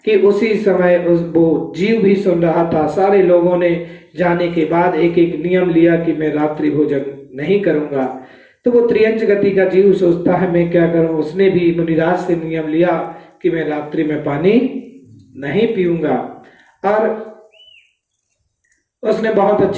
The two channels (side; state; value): both; identical; correlation 1.00